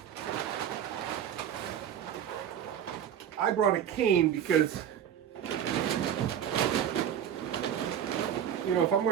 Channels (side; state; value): left; quieter; 9.4 dB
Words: I brought a cane because, you know, if I'm